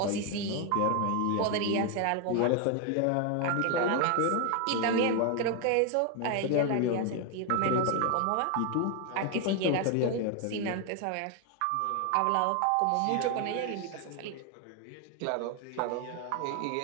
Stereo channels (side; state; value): both; different; correlation 0.01